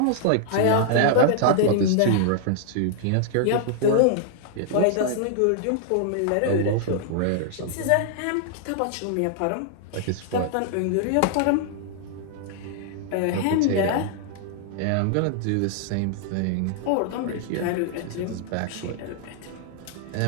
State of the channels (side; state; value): both; different; correlation -0.01